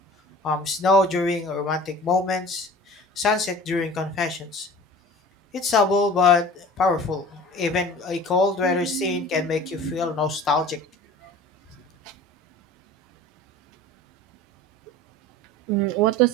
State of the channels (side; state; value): both; normal; correlation 0.42